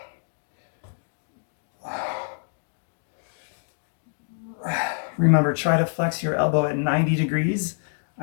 Remember, try to flex your elbow at 90 degrees.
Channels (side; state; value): right; silent; 61 dB below the other